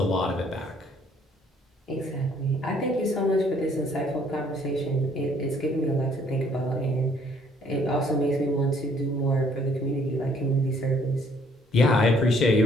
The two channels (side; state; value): both; normal; correlation 0.63